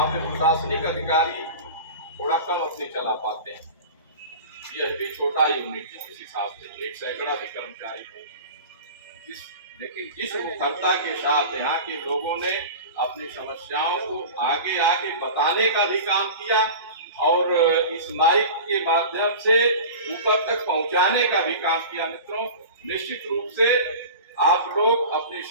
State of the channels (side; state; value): both; inverted; correlation -0.34